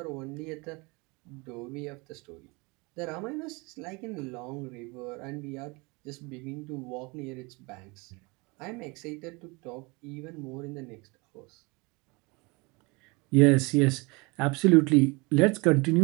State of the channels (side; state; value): left; quieter; 27.3 dB